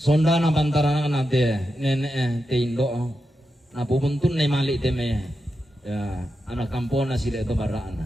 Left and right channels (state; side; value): normal; both; correlation 0.88